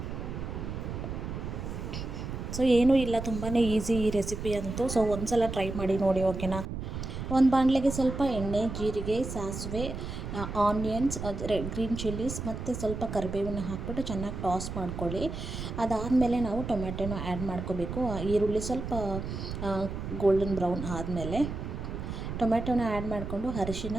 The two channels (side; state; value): right; noise; rumble, 6 dB below the sound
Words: ಸೊ ಏನೂ ಇಲ್ಲ, ತುಂಬಾ ಈಸಿ ಈ ರೆಸಿಪಿ ಅಂತೂ. ಸೊ ಒಂದು ಸಲ ಟ್ರೈ ಮಾಡಿ ನೋಡಿ, ಓಕೆನಾ. ಒಂದು ಬಾಣಲೆಗೆ ಸ್ವಲ್ಪ ಎಣ್ಣೆ, ಜೀರಿಗೆ, ಸಾಸಿವೆ, ಆನಿಯನ್ಸ್, ಗ್ರೀನ್ ಚಿಲ್ಲೀಸ್ ಮತ್ತು ಸ್ವಲ್ಪ ಕರಿಬೇವನ್ನ ಹಾಕ್ಬಿಟ್ಟು ಚೆನ್ನಾಗಿ ಟಾಸ್ ಮಾಡ್ಕೊಳ್ಳಿ. ಅದಾದಮೇಲೆ ನಾವು ಟೊಮ್ಯಾಟೊನ ಆ್ಯಡ್ ಮಾಡ್ಕೋಬೇಕು. ಈರುಳ್ಳಿ ಸ್ವಲ್ಪ ಗೋಲ್ಡನ್ ಬ್ರೌನ್ ಆದಮೇಲೆ ಟೊಮ್ಯಾಟೊನ ಆ್ಯಡ್ ಮಾಡಿಕೊಂಡು ಅರಿಶಿನ,